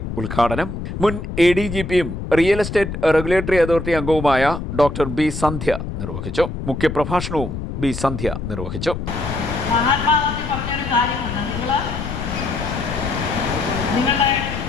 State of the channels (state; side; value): noise; left; rumble, 6 dB below the sound